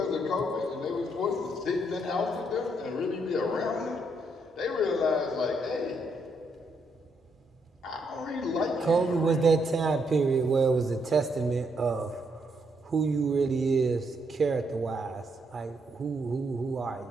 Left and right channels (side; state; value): both; normal; correlation 0.76